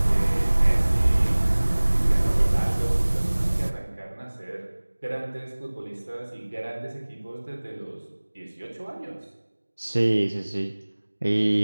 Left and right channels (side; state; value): both; inverted; correlation -1.00